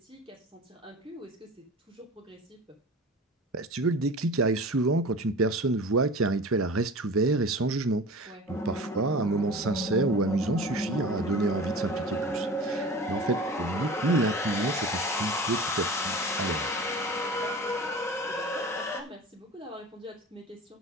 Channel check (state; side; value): normal; both; correlation 0.36